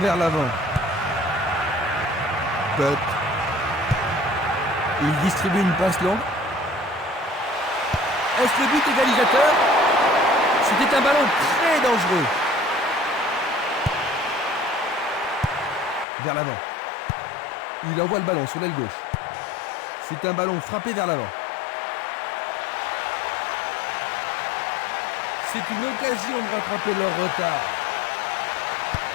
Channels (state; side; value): drops out; right; at 16.1 s